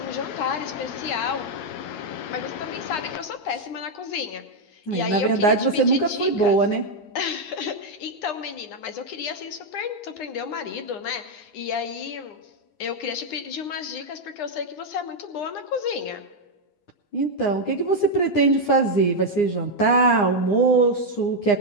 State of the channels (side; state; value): right; late; 9.8 ms